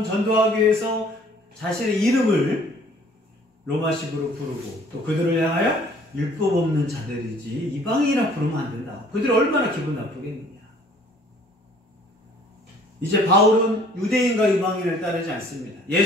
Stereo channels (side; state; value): both; normal; correlation 0.56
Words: 전도하기 위해서 자신의 이름을 로마식으로 부르고 또 그들을 향하여 율법 없는 자들이지 이방인이라 부르면 안 된다. 그들이 얼마나 기분 나쁘겠느냐. 이제 바울은 유대인과 이방인을 따르지 않습니다.